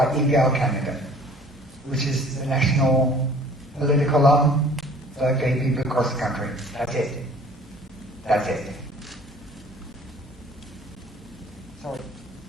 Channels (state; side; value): normal; both; correlation 0.51